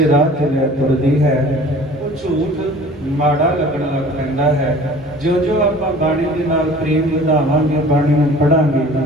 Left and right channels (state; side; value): normal; both; correlation 0.46